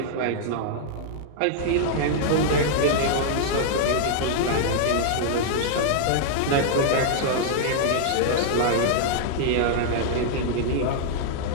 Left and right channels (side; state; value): both; different; correlation -0.01